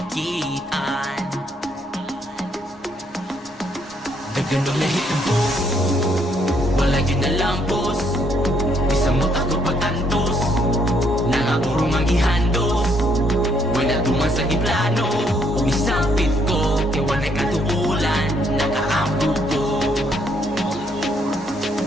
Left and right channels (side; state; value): both; normal; correlation 0.70